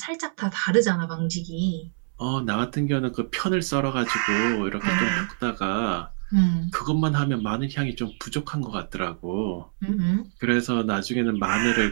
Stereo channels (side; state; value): left; silent; 62 dB below the other